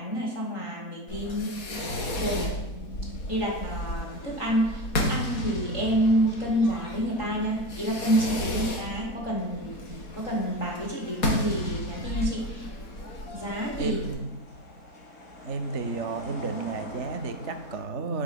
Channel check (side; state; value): right; late; 4.2 ms